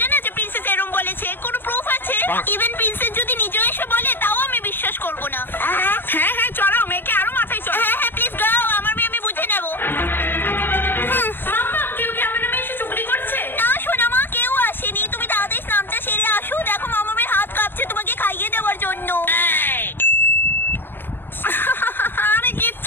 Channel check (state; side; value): late; right; 0.10 ms